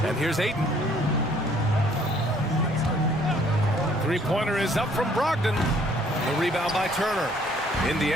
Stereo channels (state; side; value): normal; both; correlation 0.61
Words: And here's Ayton. Three-pointer is up from Brogdon. The rebound by Turner.